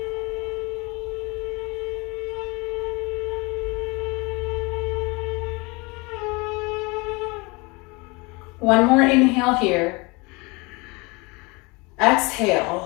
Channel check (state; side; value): quieter; right; 26.7 dB